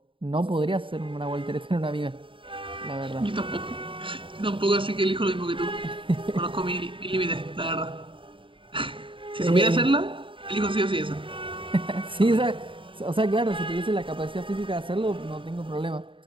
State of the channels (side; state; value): left; late; 0.25 ms